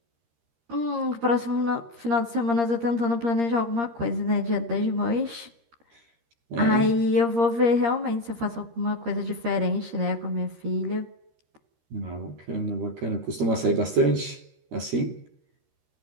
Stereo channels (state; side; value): late; left; 13 ms